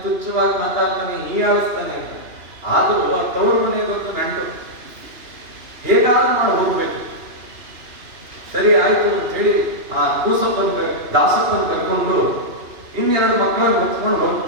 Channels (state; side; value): late; left; 2.9 ms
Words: ತುಚ್ಛವಾಗಿ ಮಾತಾಡ್ತಾನೆ, ಹೀಯಾಳಿಸ್ತಾನೆ ಅಂತ. ಆದರೂ ಆ ತವ್ರ ಮನೆಗೆ ಗೊತ್ತು ನಂಟು, ಹೇಗಾದ್ರೂ ಮಾಡಿ ಹೋಗ್ಬೇಕು. ಸರಿ, ಆಯ್ತು ಅಂತ ಹೇಳಿ ಆ ದಾಸಪ್ಪನ ಕರ್ಕೊಂಡು ಇನ್ನೆರಡು ಮಕ್ಕಳನ್ನು ಹೊತ್ಕೊಂಡು